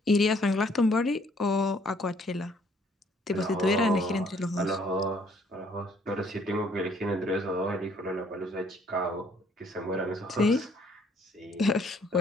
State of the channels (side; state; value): both; normal; correlation 0.63